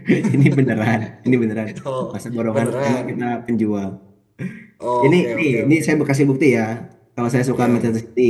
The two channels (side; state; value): both; identical; correlation 1.00